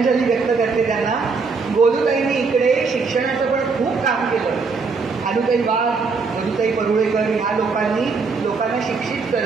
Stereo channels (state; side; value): quieter; left; 4.6 dB